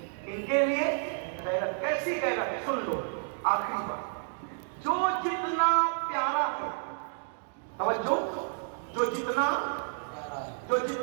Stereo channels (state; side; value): silent; left; digital silence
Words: لیے غیرت. ایسی غیرت سن لو آخری بات، جو جتنا پیارا ہے، توجہ، جو جتنا